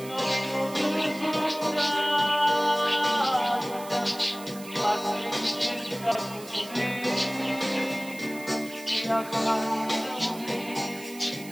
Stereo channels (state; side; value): noise; right; hiss, 16 dB below the sound